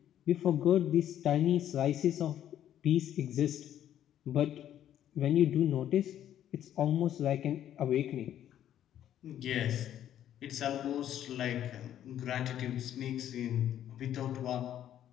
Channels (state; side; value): quieter; right; 11.1 dB